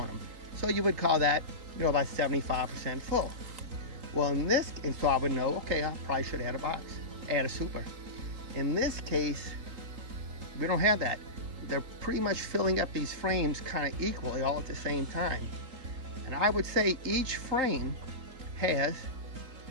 them. So you would call that, you know, about 75% full. Well, in this, and so I would know, okay, I probably should add a box, add a super. In this case, we don't have that. They're pretty much filling up these frames kind of equally all at the same time. And I would say each frame has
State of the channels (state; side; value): late; left; 3.8 ms